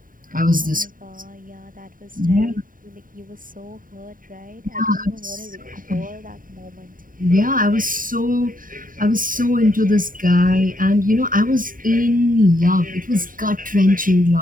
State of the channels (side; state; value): left; late; 0.40 ms